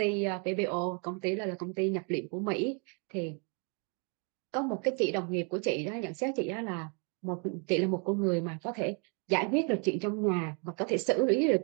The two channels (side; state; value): left; quieter; 37.0 dB